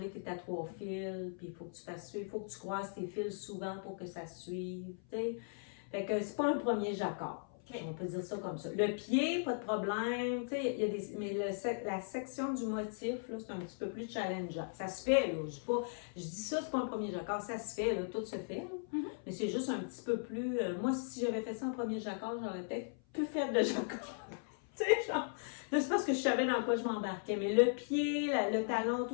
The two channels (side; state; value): right; silent; 53 dB below the other